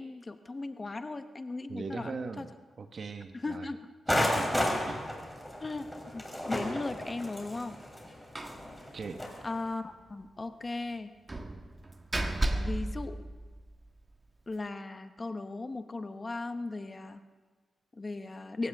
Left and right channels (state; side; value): normal; both; correlation 0.94